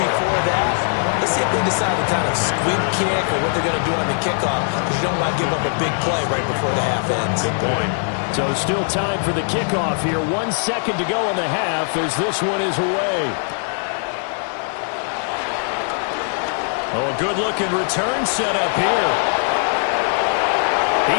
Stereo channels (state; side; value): silent; right; 60 dB below the other